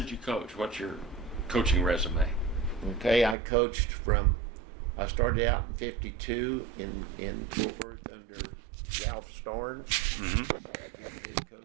did you coach? What's your coaching resume? Okay, I coached I started out in '52 in Fort Worth under Ralph Storn. Mm-hmm. He was the head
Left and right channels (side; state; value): left; drops out; at 3.4 s